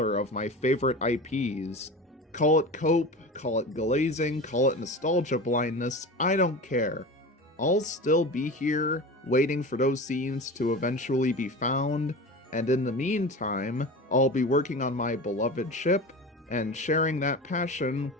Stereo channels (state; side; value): normal; both; correlation 0.31